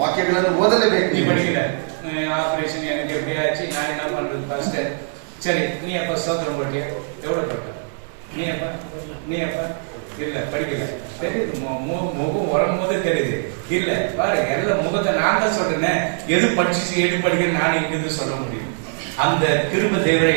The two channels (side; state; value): left; silent; 65 dB below the other